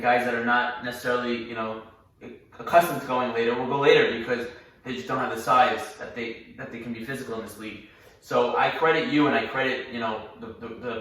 guys that are not necessarily, accustomed to going later will go later because they just don't have the size that they can be physical in this league. So I credit you and I credit, the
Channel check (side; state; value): both; identical; correlation 1.00